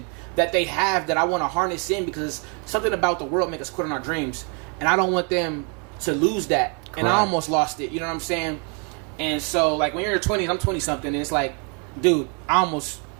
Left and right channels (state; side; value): quieter; left; 36.2 dB